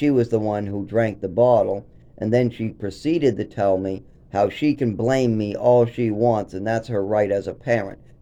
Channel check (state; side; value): identical; both; correlation 1.00